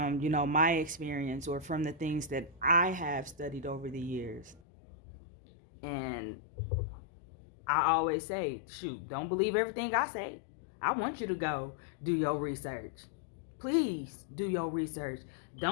my experience, or from the things that I have studied over the years. And I always say, shoot, don't believe everything I say. I want you to go do your research. Please do your research.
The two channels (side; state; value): right; drops out; at 4.6 s